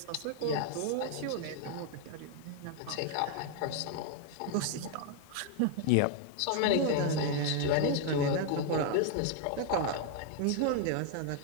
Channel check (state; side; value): different; both; correlation 0.00